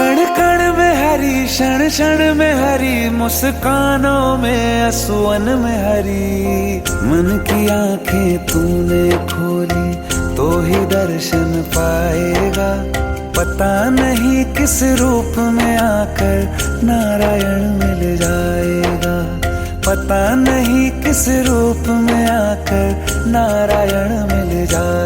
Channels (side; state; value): both; identical; correlation 1.00